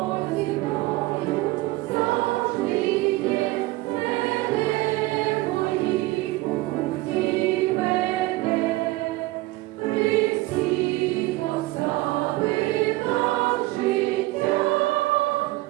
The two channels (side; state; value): left; quieter; 19.5 dB